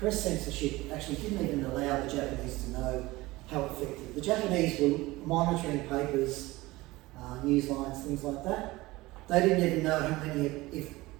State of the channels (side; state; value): left; quieter; 20.0 dB